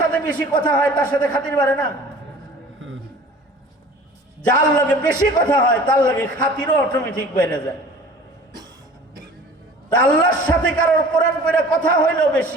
বেশি কথা হয় তার সাথে খাতির বাড়ে না? যার লগে বেশি কথা হয় তার লগে খাতিরও অটোমেটিক বেড়ে যায়। তা আল্লাহর সাথে কারোর কোরআন পড়ে কথা হইল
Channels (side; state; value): both; normal; correlation 0.44